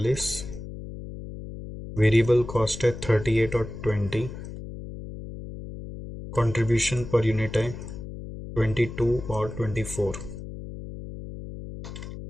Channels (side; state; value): left; noise; hum, 10 dB below the sound